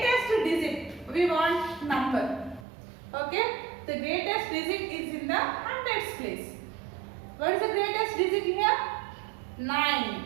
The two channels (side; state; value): left; drops out; at 2.7 s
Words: digit, we want number. Okay? The greatest digit is in the hundreds place. What is the greatest digit here? 9.